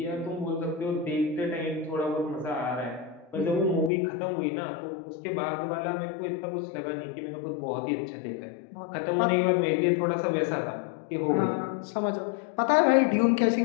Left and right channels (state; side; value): drops out; right; at 3.9 s